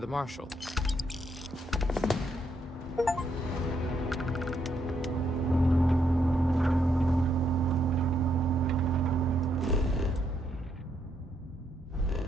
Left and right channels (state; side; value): normal; both; correlation 0.75